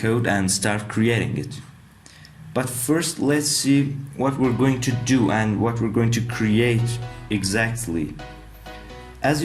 and start creating it. But first, let's see what we're going to do and what we're going to create exactly. As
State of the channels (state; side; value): identical; both; correlation 1.00